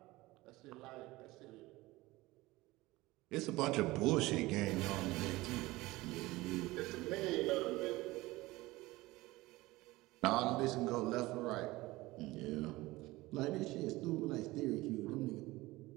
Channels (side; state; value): left; quieter; 19.8 dB